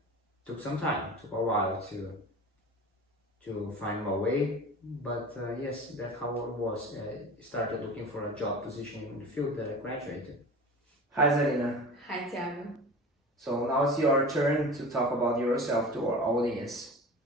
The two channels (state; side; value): normal; both; correlation 0.35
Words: took some time, took a while to find my way. But yes, that's how it was. I started looking for a job position in the field that I graduated. Hi Zarina. Hi Tiago. So now it's your turn to talk about yourself to our audience.